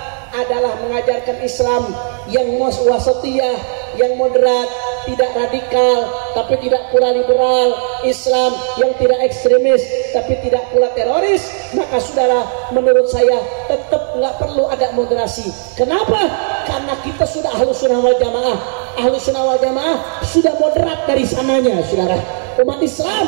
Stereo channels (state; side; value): silent; left; 62 dB below the other